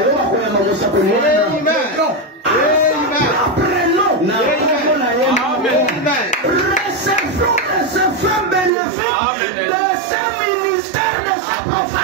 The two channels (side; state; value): left; drops out; at 8.7 s